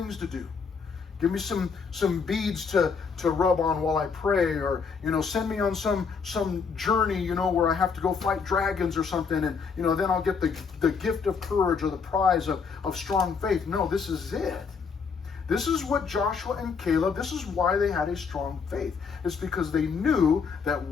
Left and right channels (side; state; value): right; quieter; 5.6 dB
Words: to do. Give me some beads to rub on while I pray, or send me on some journey, where I have to go fight dragons or something, and then I'll get the gift of courage or the prize of strong faith. No, this is it. This is what Joshua and Caleb, this is why they had a strong faith. It's because they knew that